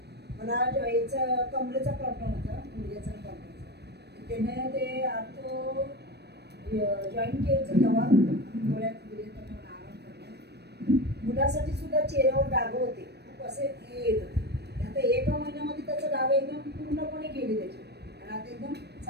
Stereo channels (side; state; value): left; late; 0.48 ms